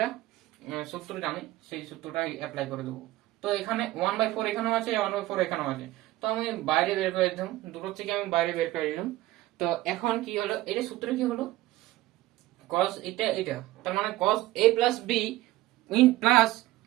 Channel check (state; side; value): quieter; left; 17.0 dB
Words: সূত্র জানি, সেই সূত্রটা অ্যাপ্লাই করে দেবো। তো এখানে 1/4 এখানেও আছে, 1/4 এখানেও আছে, তো আমি বাইরে বের করে দিলাম, দুটো থেকে আমি বাইরে বের করে দিলাম। তো এখন কি হলো, এটা সূত্র কি হলো cos এটা, তার মানে cos a plus b in plus